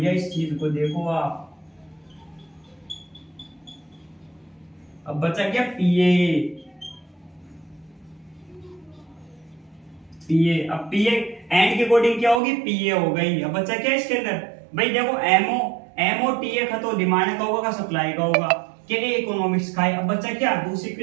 इस चीज को देखो आप। अब बचा क्या, पीए। अब पीए एंड के अकॉर्डिंग क्या होगी, पीए हो गई। अब बचा क्या इसके अंदर, भाई देखो एमओ टीए का तो डिमांड का होगा, सप्लाई का होगा, के इकोनॉमिक्स का है। अब बचा क्या, दूसरी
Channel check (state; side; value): drops out; left; at 12.4 s